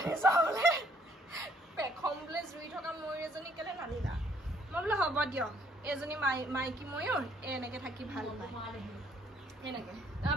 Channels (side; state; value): both; normal; correlation 0.65